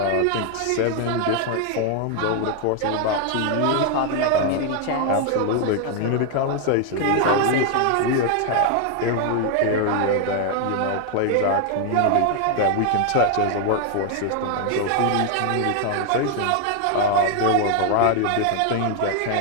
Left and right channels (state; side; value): different; both; correlation 0.01